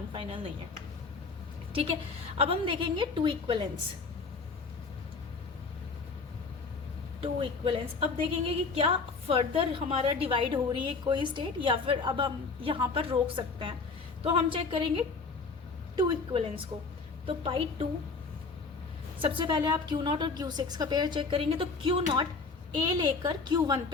फाइनल नहीं है। ठीक है, अब हम देखेंगे 2 इक्वलेंस। 2 इक्वलेंस अब देखेंगे कि क्या फर्दर हमारा डिवाइड हो रही है कोई स्टेट, या फिर अब हम यहाँ पर रोक सकते हैं। तो हम चेक करेंगे 2 इक्वलेंस को। तो पाई 2, सबसे पहले आप Q0 और Q6 का पेयर चेक करेंगे। तो Q0 ए लेकर Q1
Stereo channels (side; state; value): right; quieter; 4.3 dB